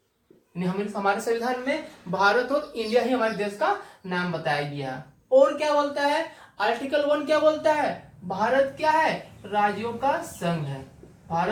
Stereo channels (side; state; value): both; identical; correlation 1.00